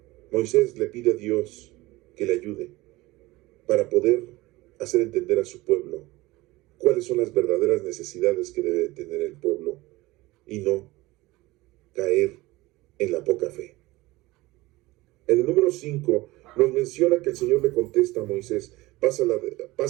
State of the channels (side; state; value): left; quieter; 20.1 dB